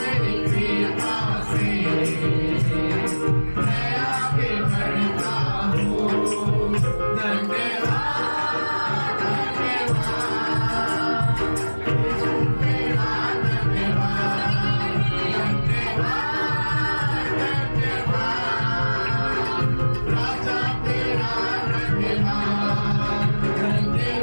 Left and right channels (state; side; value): inverted; both; correlation -1.00